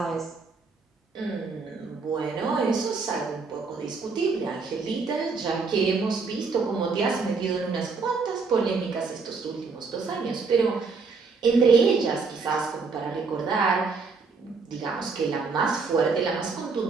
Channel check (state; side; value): quieter; left; 4.6 dB